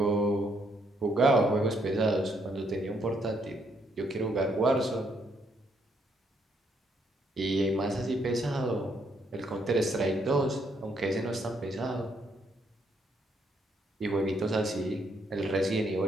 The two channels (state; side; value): normal; both; correlation 0.72